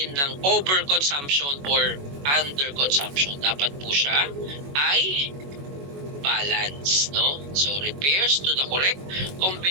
ng overconsumption or underconsumption. Dapat po siya ay balance, no? So, refers to the correct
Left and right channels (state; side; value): late; left; 21 ms